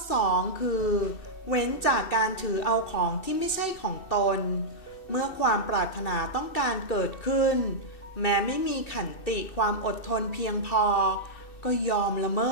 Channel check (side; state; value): right; late; 2.6 ms